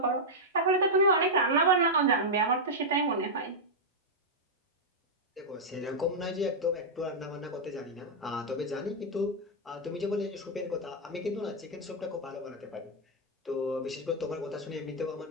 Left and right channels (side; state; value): both; normal; correlation -0.05